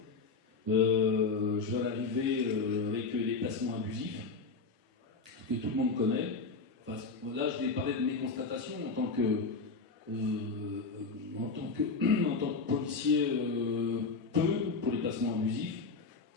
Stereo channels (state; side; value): quieter; right; 4.3 dB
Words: Je vais arriver avec les placements abusifs, que tout le monde connaît. Enfin, là je vais parler de mes constatations en tant que policier, peu pour les placements abusifs.